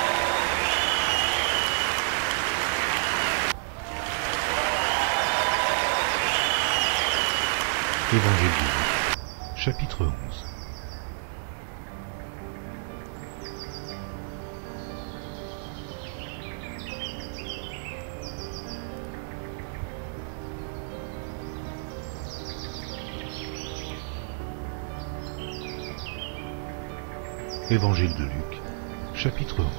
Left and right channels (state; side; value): silent; left; digital silence